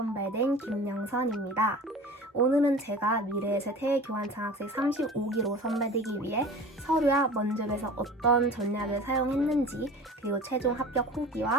김영선입니다. 오늘은 제가 미래에셋 해외 교환 장학생 35기로 선발되기 위해 서류와 면접에서 어떤 전략을 사용했는지, 그리고 최종 합격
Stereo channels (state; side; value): normal; both; correlation 0.39